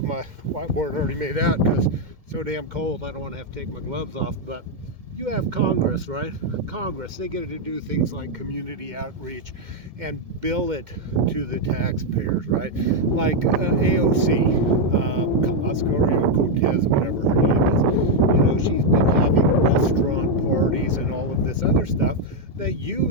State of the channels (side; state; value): left; late; 2.2 ms